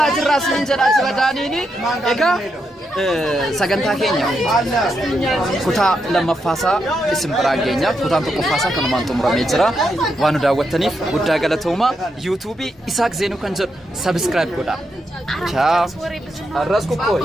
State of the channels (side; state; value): both; normal; correlation 0.82